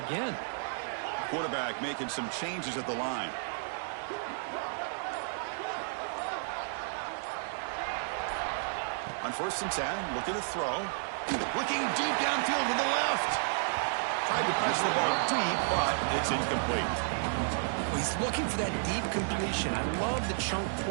Quarterback making some changes at the line. On 1st and 10, looking to throw. Looking deep downfield to the left. Tried to press the ball deep, but it's incomplete. Well, he's looking for that deep completion. I love the chunk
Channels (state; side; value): silent; left; digital silence